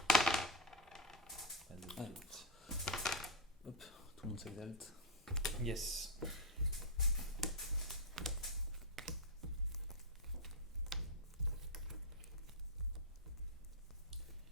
Pas de Allez. réussite. Hop, tout le monde s'exalte. Yes.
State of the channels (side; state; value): both; normal; correlation 0.02